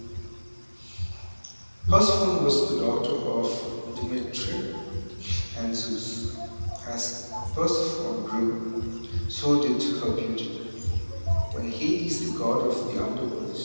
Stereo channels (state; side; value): inverted; both; correlation -1.00